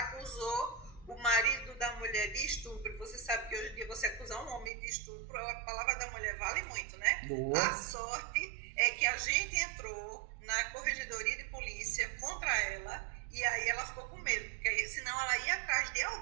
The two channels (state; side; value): drops out; left; at 4.7 s